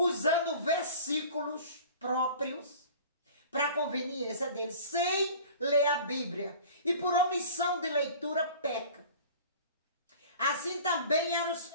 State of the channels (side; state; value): both; inverted; correlation -0.43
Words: versículos próprios para conveniência deles, sem ler a Bíblia. E por omissão de leitura peca. Assim também